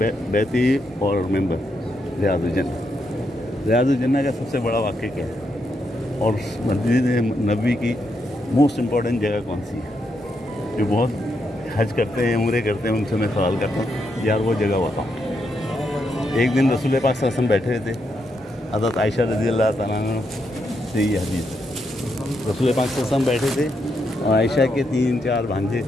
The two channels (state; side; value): normal; both; correlation 0.81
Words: बैती और मेंबर रियाजुल जन्नत। रियाजुल जन्नत का सबसे बड़ा वाक़या क्या है और मस्जिद नबवी की मोस्ट इम्पॉर्टेंट जगह कौन सी है? जो बहुत हज करते हैं, उम्रे करते हैं, उनसे मैं सवाल करता हूँ यार वो जगह बताओ। एक दिन रसूल पाक सल्लल्लाहु अलैहि वसल्लम बैठे थे, हज़रत आयशा रज़ियल्लाहु तआला अन्हा से ये हदीस, रसूल पाक सल्लल्लाहु अलैहि वसल्लम बैठे थे और आयशा के 3-4 भांजे